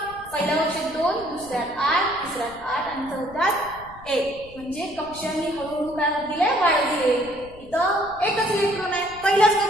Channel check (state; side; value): noise; left; rumble, 20 dB below the sound